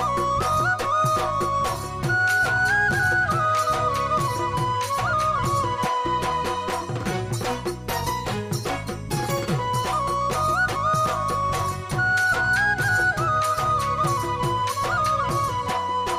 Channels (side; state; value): both; identical; correlation 1.00